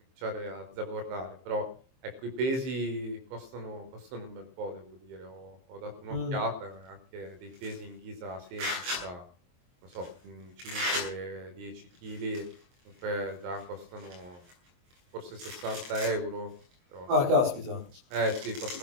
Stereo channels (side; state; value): left; late; 23 ms